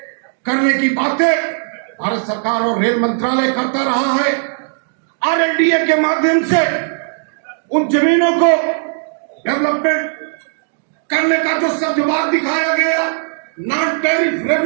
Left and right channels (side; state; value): left; silent; digital silence